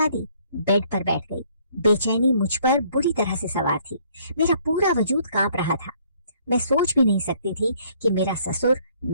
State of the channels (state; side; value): inverted; both; correlation -0.62